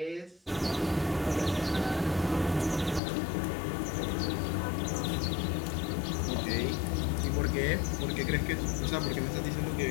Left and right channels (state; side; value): drops out; right; at 3.0 s